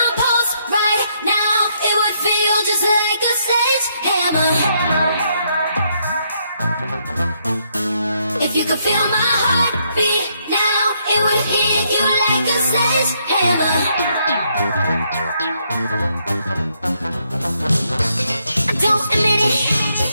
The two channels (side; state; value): both; inverted; correlation -0.74